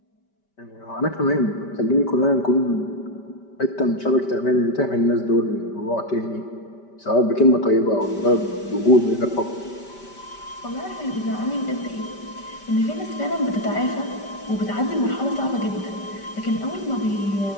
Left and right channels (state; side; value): late; right; 5.1 ms